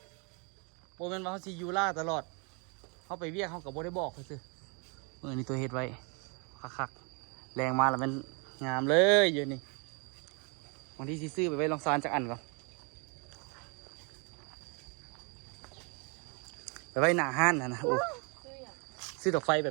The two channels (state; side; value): quieter; left; 33.8 dB